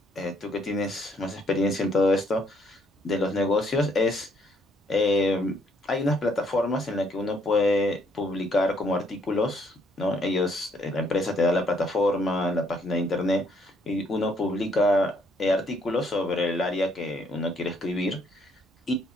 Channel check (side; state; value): both; normal; correlation 0.69